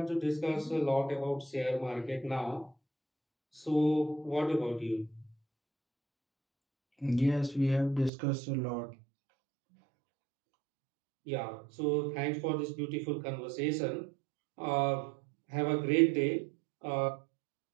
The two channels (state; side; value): drops out; left; at 8.1 s